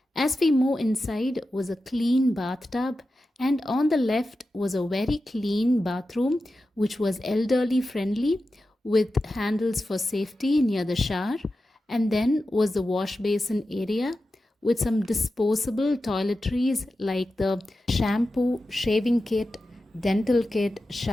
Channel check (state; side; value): normal; both; correlation 0.92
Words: As we move inside was a clean bathtub, and on the left was a very clean bathroom, which was elderly friendly, with handles for safety near the shower. And then was the wash basin area with some disposable toiletries like the shampoo, shaving kit, dental kit,